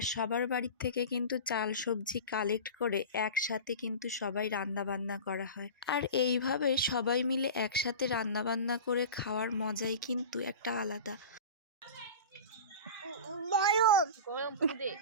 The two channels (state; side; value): inverted; both; correlation -0.31